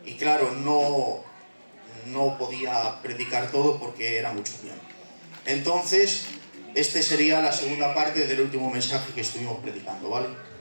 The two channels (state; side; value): inverted; both; correlation -1.00